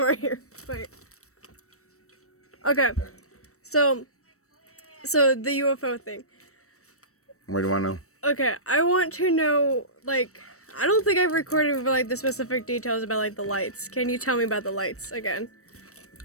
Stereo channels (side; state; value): right; late; 0.65 ms